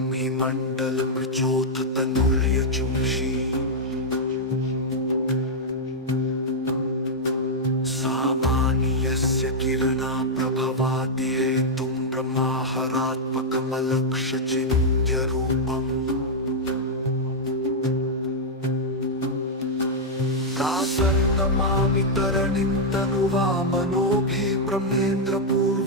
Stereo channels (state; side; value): normal; both; correlation -0.04